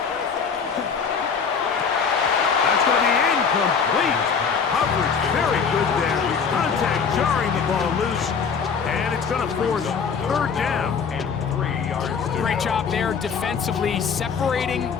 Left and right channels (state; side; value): quieter; right; 6.1 dB